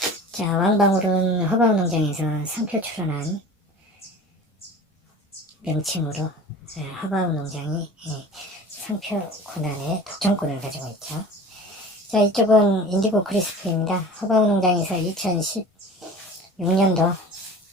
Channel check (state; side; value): normal; both; correlation 0.39